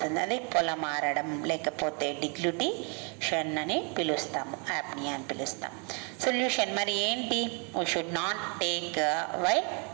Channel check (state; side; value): quieter; left; 35.6 dB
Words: అది పొలమారడం లేకపోతే డిగ్లుటిషన్ అని పిలుస్తాము, యాప్నియా అని పిలుస్తాం. సొల్యూషన్ మరి ఏంటి, we should not take while